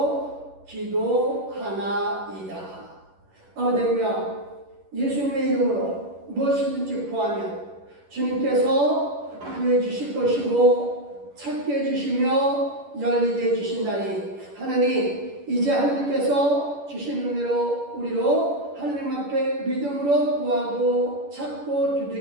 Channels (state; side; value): late; left; 11 ms